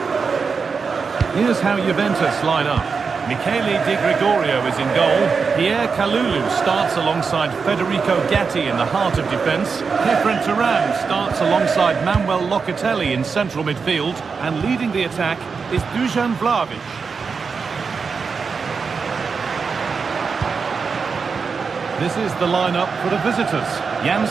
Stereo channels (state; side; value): quieter; left; 5.3 dB